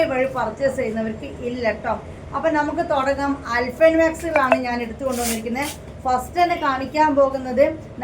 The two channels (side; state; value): both; identical; correlation 1.00